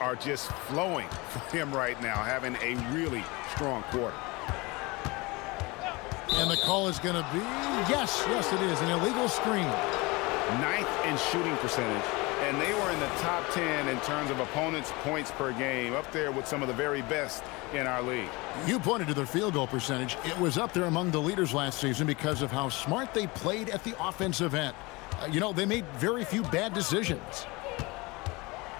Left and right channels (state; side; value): quieter; right; 24.5 dB